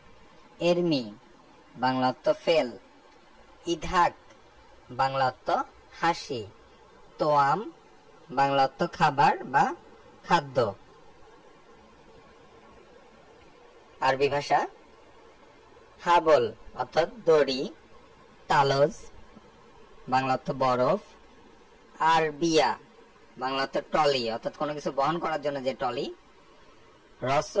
এরমি, বাংলা অর্থ ফেল। ইদহাক, বাংলা অর্থ হাসি। তোয়াম, বাংলা অর্থ খাবার বা খাদ্য। আরবি ভাষা হাবল অর্থাৎ দড়ি। তালজ, বাংলা অর্থ বরফ। আরবিয়া, বাংলা অর্থ ট্রলি অর্থাৎ কোনো কিছু বহন করার জন্য যে ট্রলি।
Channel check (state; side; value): identical; both; correlation 1.00